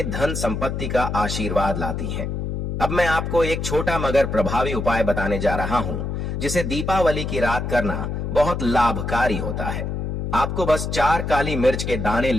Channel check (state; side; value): noise; left; hum, 3 dB below the sound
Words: धन संपत्ति का आशीर्वाद लाती हैं। अब मैं आपको एक छोटा मगर प्रभावी उपाय बताने जा रहा हूं जिसे दीपावली की रात करना बहुत लाभकारी होता है। आपको बस 4 काली मिर्च के दाने